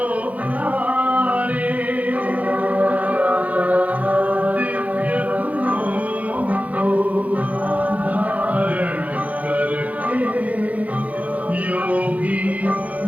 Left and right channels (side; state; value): left; late; 0.070 ms